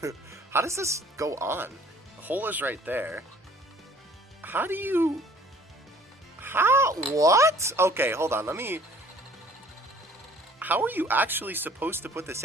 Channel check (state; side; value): normal; both; correlation 0.54